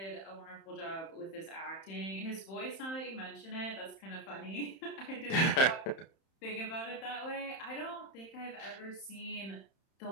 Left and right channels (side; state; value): right; late; 31 ms